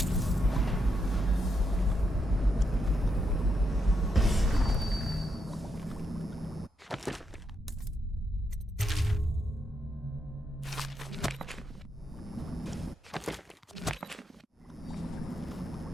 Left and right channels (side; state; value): both; normal; correlation 0.81